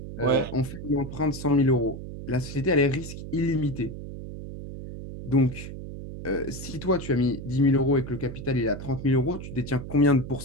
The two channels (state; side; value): noise; right; hum, 10 dB below the sound